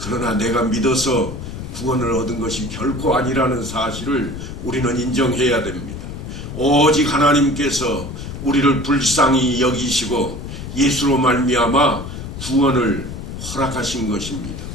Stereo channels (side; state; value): left; noise; rumble, 8 dB below the sound